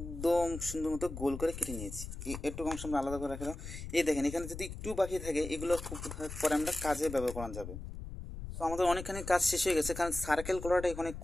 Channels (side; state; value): left; noise; rumble, 9 dB below the sound